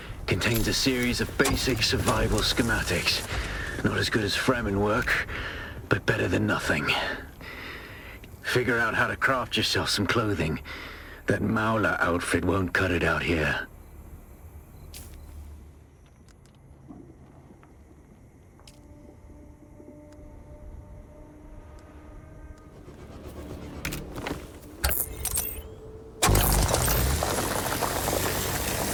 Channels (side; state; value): both; identical; correlation 1.00